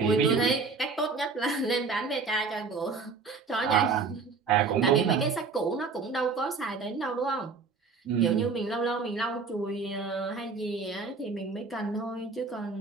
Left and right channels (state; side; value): quieter; left; 4.7 dB